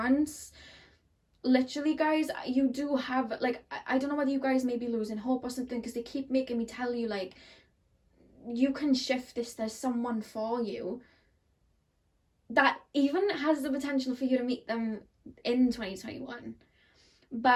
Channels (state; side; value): identical; both; correlation 1.00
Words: literally, guys, you do have, like, I don't know whether you guys may be losing hope or something, because they keep making me tell you, like, you can shift this. There's someone for you that even has the potential for you to meet them in 2021.